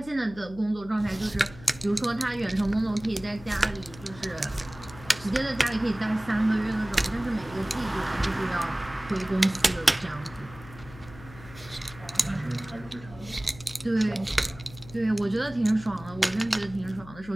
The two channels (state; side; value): noise; left; hum, 18 dB below the sound